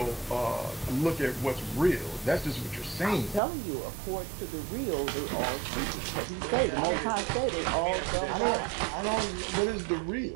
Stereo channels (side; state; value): left; drops out; at 3.4 s